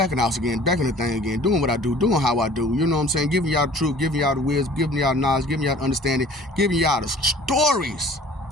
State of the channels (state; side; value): normal; both; correlation 0.49